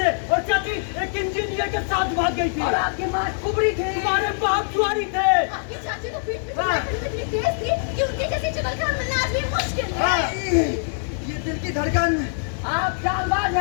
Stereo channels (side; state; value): right; silent; 63 dB below the other